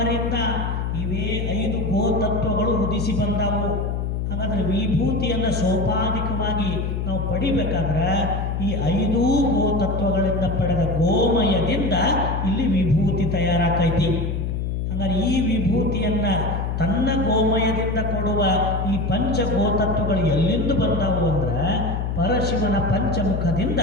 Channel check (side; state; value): left; noise; hum, 1 dB below the sound